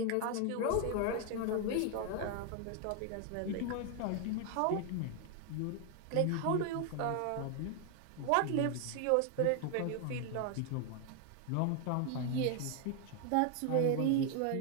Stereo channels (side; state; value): both; different; correlation 0.00